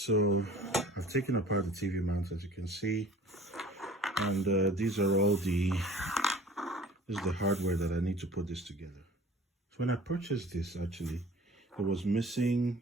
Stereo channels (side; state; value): both; normal; correlation 0.47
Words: I've taken apart the TV mount, as you can see, and these are all this is the hardware that I need to put this together. So when I purchased this, actually, it was missing.